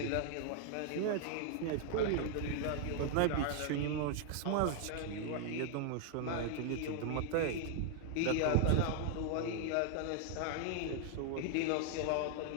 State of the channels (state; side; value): different; both; correlation 0.00